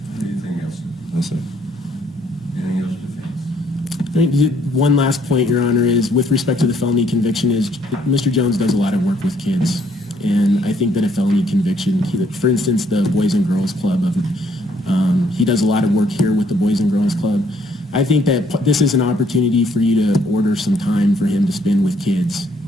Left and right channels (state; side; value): normal; both; correlation 0.66